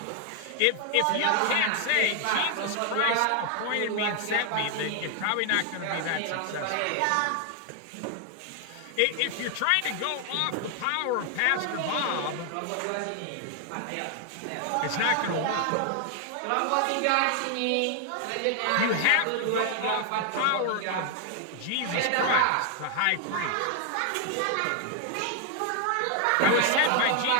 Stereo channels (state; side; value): different; both; correlation 0.00